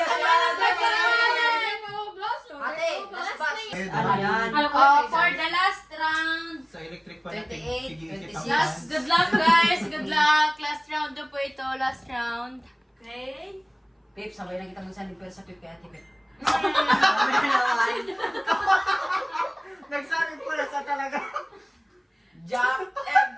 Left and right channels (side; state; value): both; identical; correlation 1.00